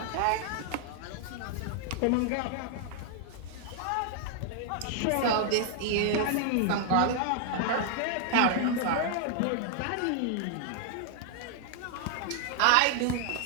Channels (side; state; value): both; different; correlation 0.00